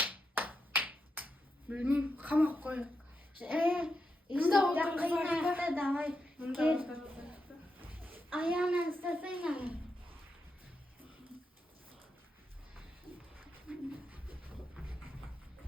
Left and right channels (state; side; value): normal; both; correlation 0.85